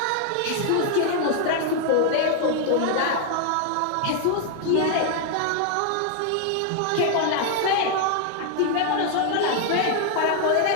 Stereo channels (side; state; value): both; different; correlation 0.00